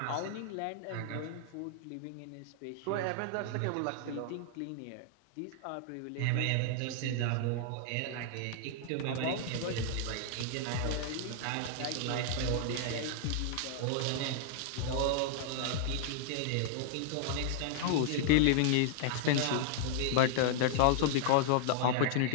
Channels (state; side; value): different; both; correlation -0.01